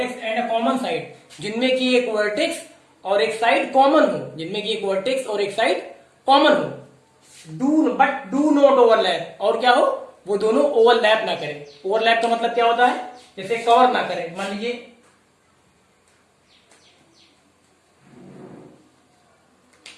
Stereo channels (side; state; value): both; identical; correlation 1.00